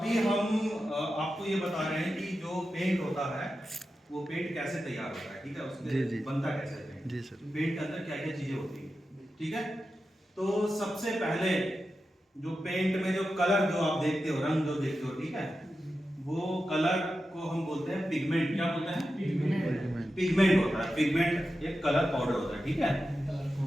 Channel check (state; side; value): normal; both; correlation 0.91